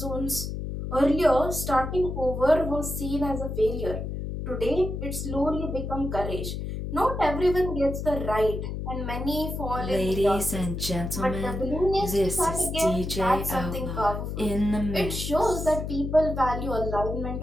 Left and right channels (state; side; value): noise; left; hum, 5 dB below the sound